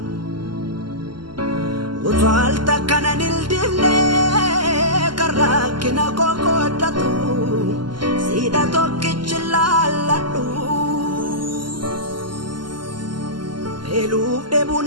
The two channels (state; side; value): late; left; 0.71 ms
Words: otoo al takka nan hildimne kan rakkina koo kooddatu siidha tokkichi laalladhu. Beeluuf